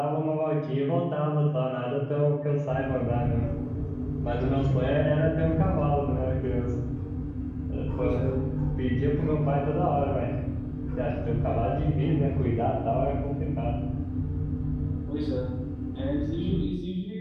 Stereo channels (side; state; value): both; identical; correlation 1.00